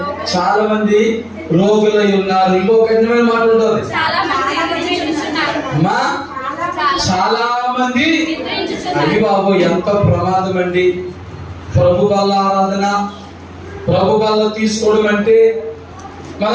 చాలా మంది రోగులై ఉన్నారు. ఇంకో కఠినమైన మాట ఉంటుంది, చాలా మంది. అది బాబు ఎంత ప్రమాదం అండి! ప్రభు వల్ల ఆరాధన, ప్రభు వల్ల తీసుకోవడం అంటే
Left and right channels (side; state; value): both; identical; correlation 1.00